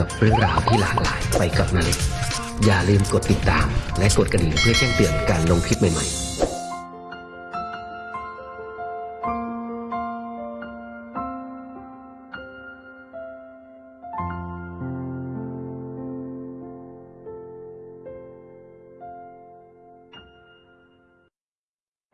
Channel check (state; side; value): identical; both; correlation 1.00